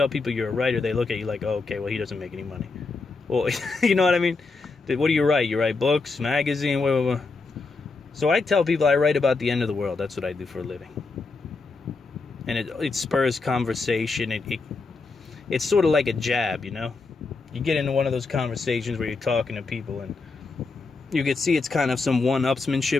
people you're a writer, they look at you like, oh, okay, well, he doesn't make any money. Well, you know what I mean? What do you write? You write books, magazine, whatever. So I tell people I write about the end of the world. That's what I do for a living. And it spurs conversation. It's sort of like a jab, you know? You get into one of those conversations where you're talking to people and you can see it's kind of some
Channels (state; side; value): quieter; right; 4.0 dB